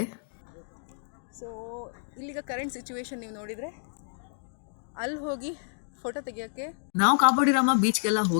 ಸೊ ಇಲ್ಲಿಗ ಕರೆಂಟ್ ಸಿಚುವೇಶನ್ ನೀವು ನೋಡಿದರೆ ಅಲ್ಲಿ ಹೋಗಿ ಫೋಟೋ ತೆಗಿಯೋಕ್ಕೆ ನಾವು ಕಾಬೋಡಿ ರಾಮ ಬೀಚ್ಗೆಲ್ಲ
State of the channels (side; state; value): right; silent; digital silence